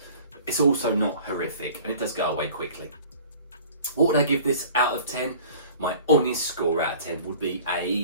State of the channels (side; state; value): both; inverted; correlation -0.46